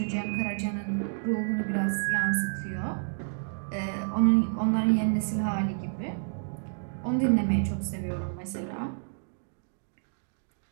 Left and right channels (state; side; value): silent; left; digital silence